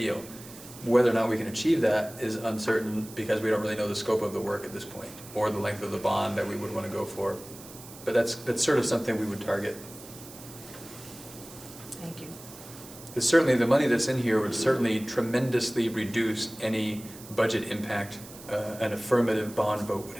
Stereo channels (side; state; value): right; noise; hiss, 17 dB below the sound